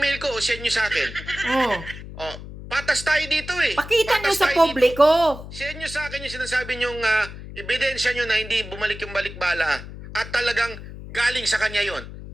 ko, o send nyo sa akin. Oh. O, patas tayo dito eh. Pakita nyo Patas sa tayo publiko. dito. Send nyo sa akin yung sinasabi nyong ebidensya nyo na hindi bumalik yung balikbala. At talagang galing sa kanya yon.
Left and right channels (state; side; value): noise; left; hum, 13 dB below the sound